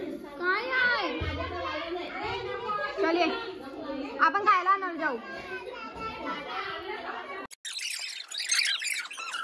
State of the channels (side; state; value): both; identical; correlation 1.00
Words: काय आहे? चलिए आपण खायला आणणार जाऊ.